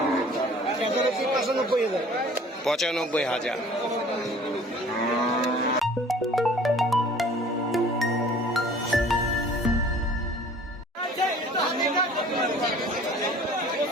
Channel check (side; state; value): both; normal; correlation 0.50